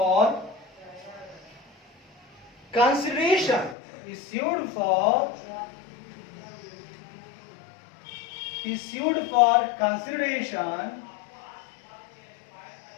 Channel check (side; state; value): right; drops out; at 3.8 s